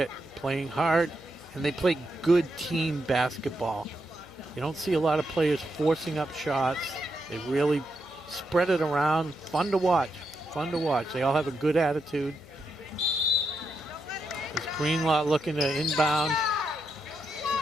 playing hard, and they play good team basketball. You don't see a lot of players forcing up shots. They really spread it around. Fun to watch. Fun to watch. They all have a good attitude. There's Greenlaw looking to inbound.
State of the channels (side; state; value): left; noise; hum, 23 dB below the sound